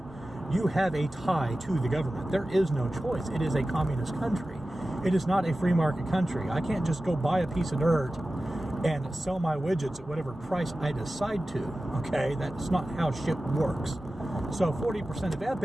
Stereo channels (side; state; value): both; normal; correlation 0.95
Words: you have a tie to the government. There is no choice. It is a communist country. It is not a free market country. I can't just go buy a piece of dirt and sell my widgets at whatever price I decide to. Okay, that's not how shit works. So 40% of